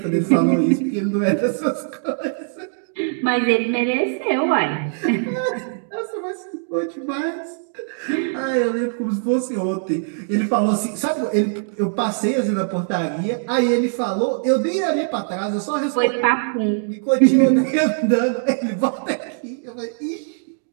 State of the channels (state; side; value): silent; left; digital silence